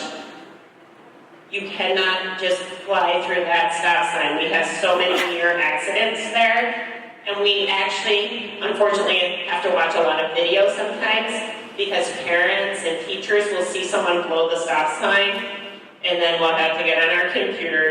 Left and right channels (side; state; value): both; identical; correlation 1.00